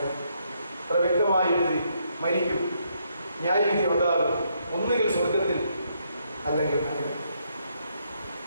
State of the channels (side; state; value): both; inverted; correlation -0.74